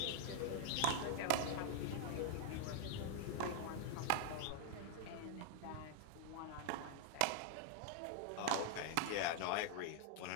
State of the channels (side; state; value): both; different; correlation 0.00